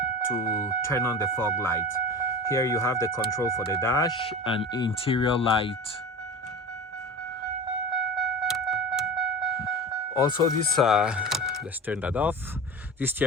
to turn on the fog light. Here you have the control for the dash and interior light. Also this, let's turn that off. This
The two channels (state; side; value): normal; both; correlation 0.31